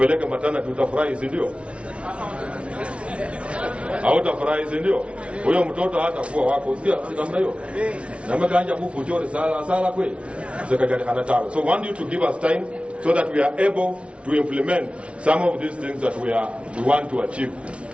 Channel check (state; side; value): late; left; 0.060 ms